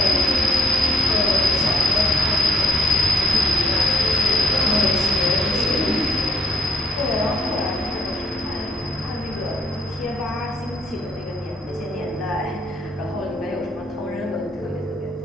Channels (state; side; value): normal; both; correlation 0.67